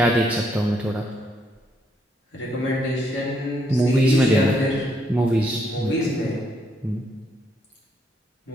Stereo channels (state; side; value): normal; both; correlation 0.74